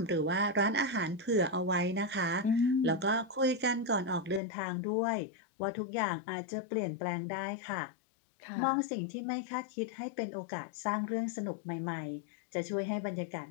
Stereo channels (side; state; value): right; drops out; at 4.4 s